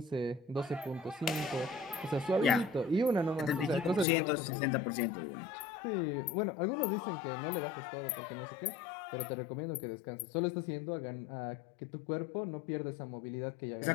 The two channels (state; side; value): drops out; right; at 4.0 s